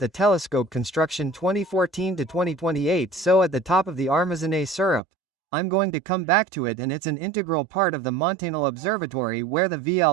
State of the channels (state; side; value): drops out; left; at 5.0 s